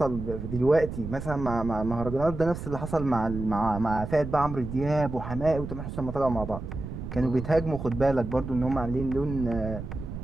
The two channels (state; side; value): noise; right; rumble, 8 dB below the sound